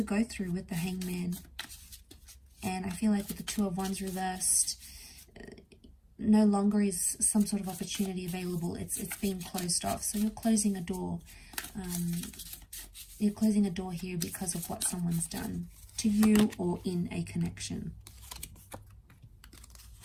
go through with the Hangman. And I feel like with the Two of Wands reversed, no longer is some sort of opportunity available. It's being closed off. So you're closing a door. You're closing a door here because of what someone's done to you or in a connection.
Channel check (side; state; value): both; identical; correlation 1.00